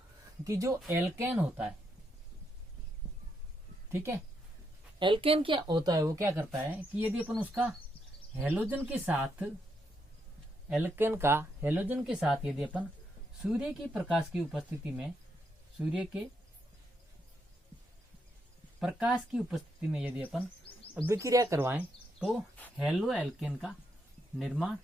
कि जो एल्केन होता है, ठीक है, एल्केन क्या होता है, वो क्या करता है कि यदि अपन उसका हेलोजन के साथ, एल्केन का हेलोजन के साथ यदि अपन सूर्य की प्रकाश की उपस्थिति में, सूर्य के प्रकाश की उपस्थिति में यदि अपन अभिक्रिया करवाएं तो हेलो एल्केन का निर्माण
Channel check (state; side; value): normal; both; correlation 0.79